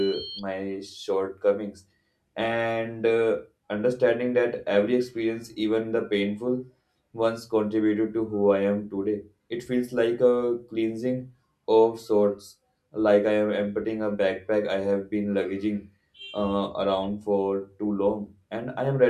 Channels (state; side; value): identical; both; correlation 1.00